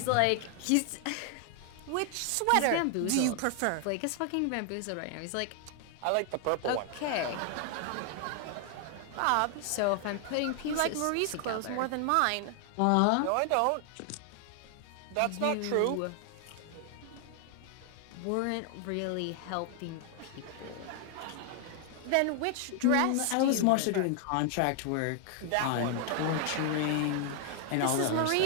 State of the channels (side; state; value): both; different; correlation 0.00